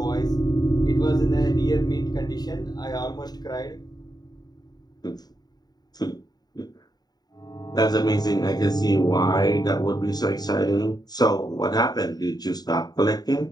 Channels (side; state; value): right; late; 0.19 ms